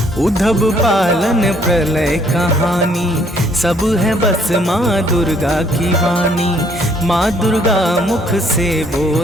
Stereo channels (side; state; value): both; normal; correlation 0.65